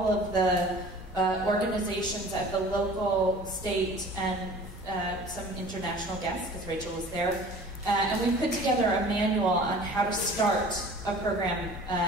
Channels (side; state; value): both; normal; correlation 0.45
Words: of the organizations at the local, state, and some international guests, because Rachel was there. And we put together a manual on how to start a program